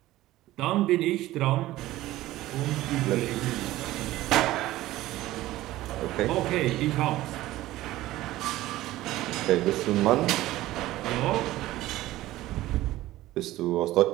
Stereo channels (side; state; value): left; quieter; 16.2 dB